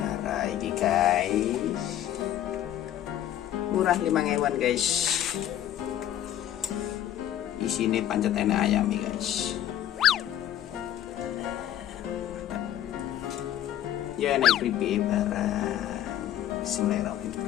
ini guys, murah 5.000-an guys. Di sini pancetene ayam nih guys. Ya naik keripik barang.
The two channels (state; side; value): quieter; right; 11.6 dB